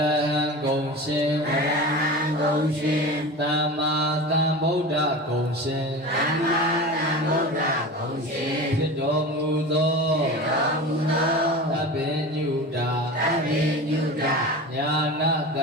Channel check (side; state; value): both; normal; correlation 0.31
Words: ဟံကုံရှင်သမ္မာသမ္ဗုဒ္ဓကုံရှင်ဖြစ်တော်မူသောသဗ္ဗညုတာညာနာသ